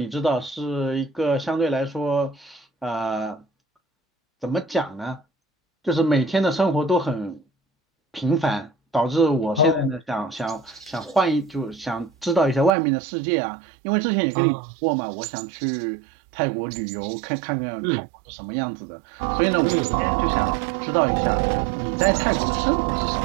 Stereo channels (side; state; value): left; drops out; at 12.8 s